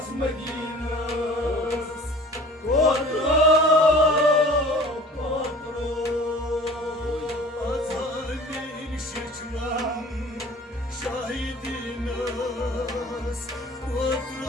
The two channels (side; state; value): both; normal; correlation 0.45